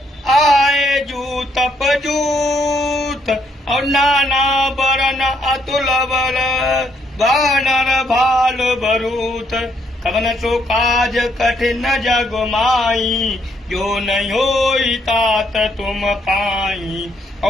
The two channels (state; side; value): normal; both; correlation 0.73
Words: आए जूत पजूत और नाना बरन अतुल बल बानर भाल बरूत कवन सो काज कठिन जग माई जो नहीं होई तात तुम पाई